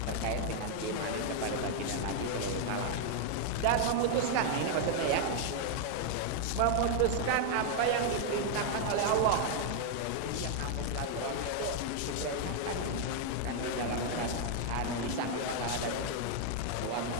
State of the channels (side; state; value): both; different; correlation 0.00